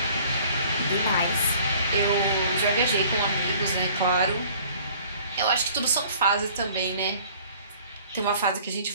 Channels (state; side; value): inverted; both; correlation -0.52